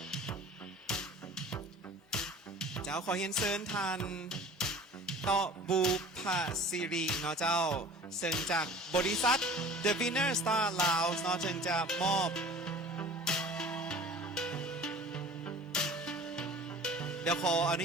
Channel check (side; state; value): both; normal; correlation 0.44